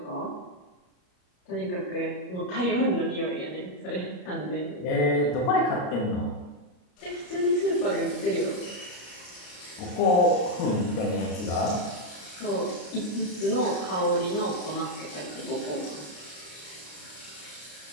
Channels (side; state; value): right; late; 33 ms